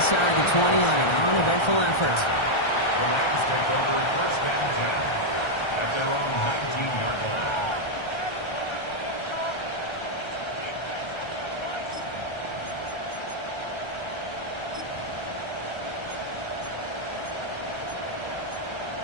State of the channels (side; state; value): right; late; 1.3 ms